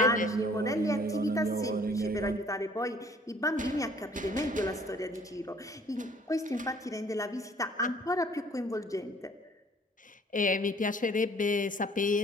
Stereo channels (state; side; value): normal; both; correlation 0.56